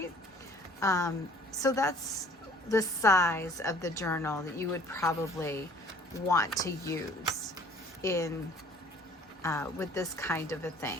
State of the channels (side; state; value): both; normal; correlation 0.53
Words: So that's the size of the journal that you would probably want to use in with this kind of a